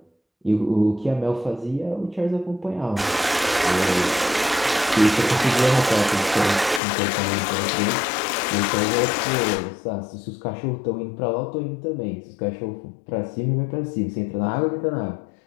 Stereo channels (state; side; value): drops out; right; at 6.8 s